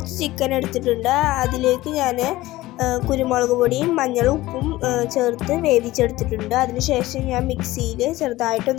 ചിക്കൻ എടുത്തിട്ടുണ്ട്. അതിലേക്ക് ഞാൻ കുരുമുളക് പൊടിയും മഞ്ഞളും ഉപ്പും ചേർത്ത് വേവിച്ചെടുത്തിട്ടുണ്ട്. അതിനുശേഷം ഞാൻ മിക്സിയിൽ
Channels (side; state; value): right; quieter; 17.6 dB